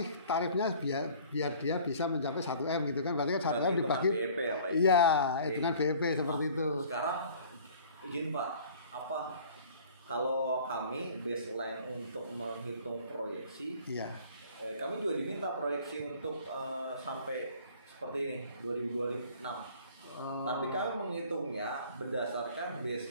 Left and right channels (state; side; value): inverted; both; correlation -0.50